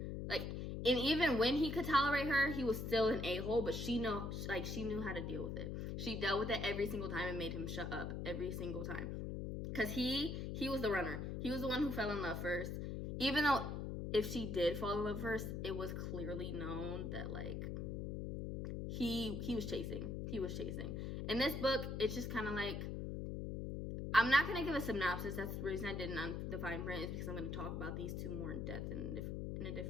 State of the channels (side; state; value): left; noise; hum, 4 dB below the sound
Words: Like, and even when he could tolerate her, he was still an a-hole, but she knew how to deal with it. She dealt with it every single time and made him shut up every single time. Because he was the runner. He was the one who fell in love first. Even though if she did fall in love first, it was clearly known that, like, he was chasing. He was chasing. In this book, it's just kind of like, I'm not going to give a synopsis. That's the reason I didn't on the fine print, is because I'm going to talk about these two more in depth in a